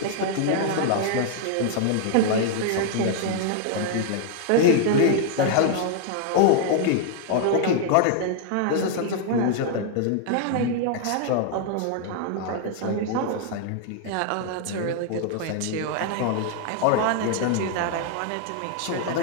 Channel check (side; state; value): both; different; correlation 0.00